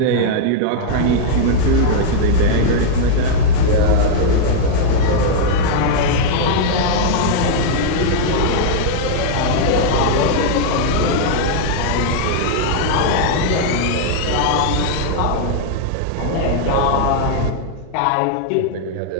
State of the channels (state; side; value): different; both; correlation -0.01